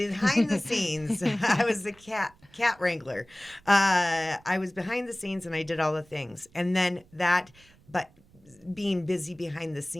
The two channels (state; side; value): noise; right; rumble, 29 dB below the sound